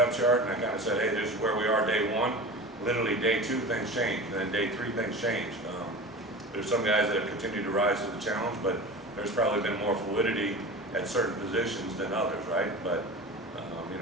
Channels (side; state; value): both; normal; correlation 0.32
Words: chart, and I kind of said, hey, this is where we are day one. Literally day two, things change, and then day three, things change. There's some guys that have continued to rise to the challenge, but there's probably been more fluidity at certain positions than others, right? But you